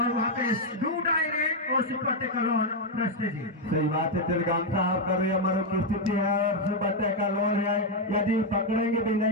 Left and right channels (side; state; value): both; normal; correlation 0.01